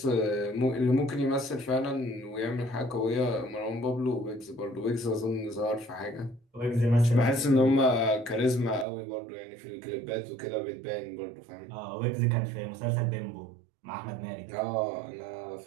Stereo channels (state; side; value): drops out; left; at 8.8 s